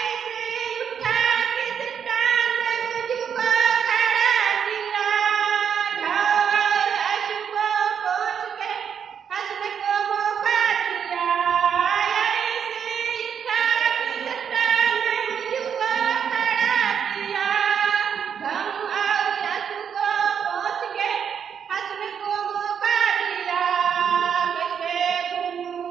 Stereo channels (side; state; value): left; quieter; 7.6 dB